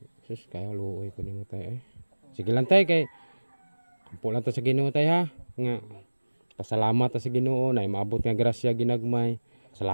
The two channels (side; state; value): both; inverted; correlation -1.00